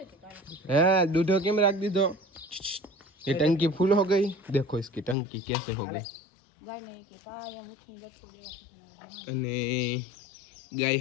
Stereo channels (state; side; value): drops out; right; at 5.2 s